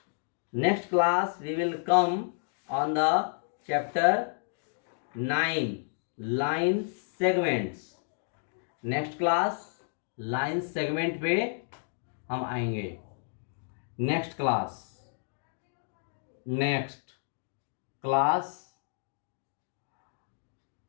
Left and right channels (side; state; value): right; silent; digital silence